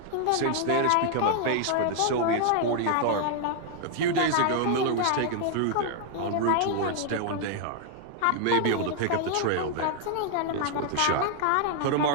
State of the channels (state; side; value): different; both; correlation 0.00